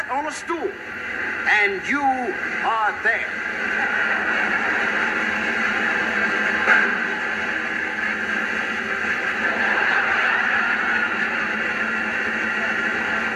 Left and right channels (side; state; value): both; identical; correlation 1.00